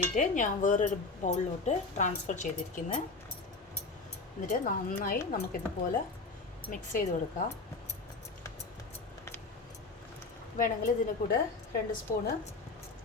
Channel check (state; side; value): quieter; right; 3.7 dB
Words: ഞാൻ വേറൊരു ബൗളിലോട്ട് ട്രാൻസ്ഫർ ചെയ്തിരിക്കുന്നത്. എന്നിട്ട് നന്നായി നമുക്കിതുപോലെ മിക്സ് ചെയ്ത് കൊടുക്കാം. വേണമെങ്കിൽ ഇതിൻ്റെ കൂടെ 2 സ്പൂണ്